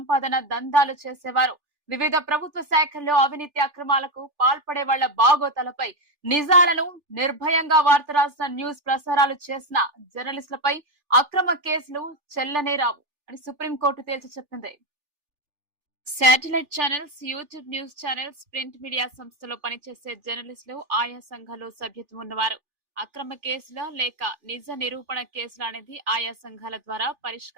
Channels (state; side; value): late; left; 3.4 ms